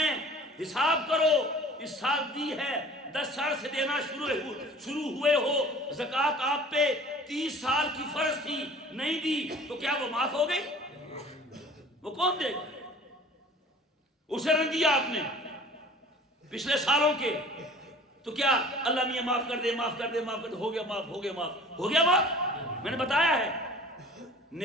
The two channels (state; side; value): normal; both; correlation 0.46